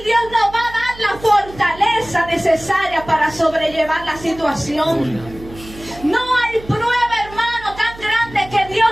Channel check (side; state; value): right; noise; hum, 18 dB below the sound